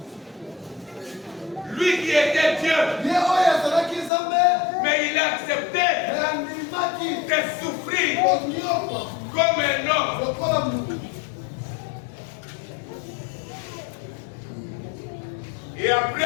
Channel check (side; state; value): right; drops out; at 4.1 s